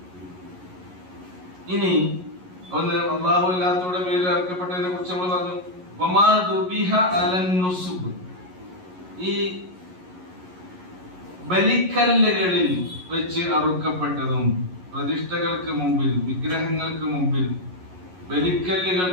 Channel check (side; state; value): left; late; 11 ms